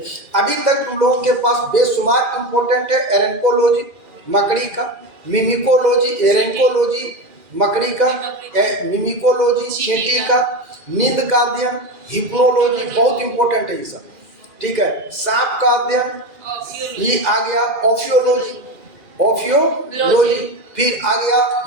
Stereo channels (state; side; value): late; left; 2.4 ms